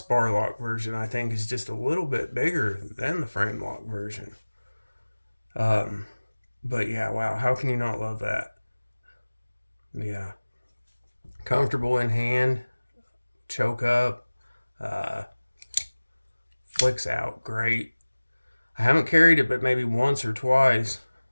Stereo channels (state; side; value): inverted; both; correlation -1.00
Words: lock version I think is just a little bit bigger than the frame lock version. But yeah, wow, how can you not love that? Yeah. Comfortable in hand, choke up, flicks out great. I haven't carried it but maybe once or twice.